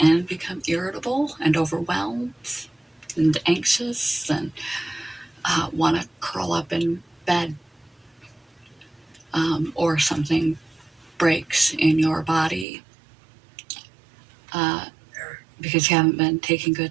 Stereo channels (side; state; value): left; drops out; at 12.7 s